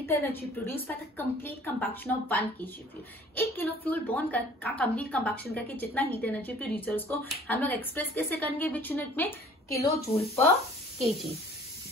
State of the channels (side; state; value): both; normal; correlation 0.52